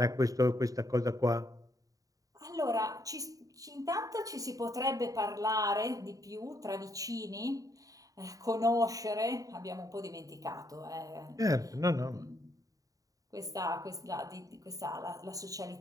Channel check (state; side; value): late; left; 0.17 ms